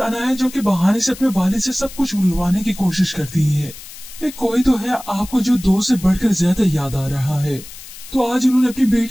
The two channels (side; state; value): left; noise; hiss, 16 dB below the sound